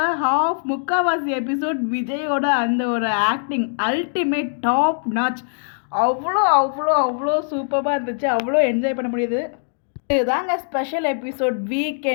முக்கால்வாசி எபிசோட் விஜயோட அந்த ஒரு ஆக்டிங் அல்டிமேட் டாப் நாச். அவ்வளோ அவ்வளோ அவ்வளோ சூப்பராக இருந்துச்சு, அவ்வளோ என்ஜாய் பண்ண முடியுது. இதுதாங்க ஸ்பெஷல் எபிசோட்.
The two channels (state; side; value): silent; right; digital silence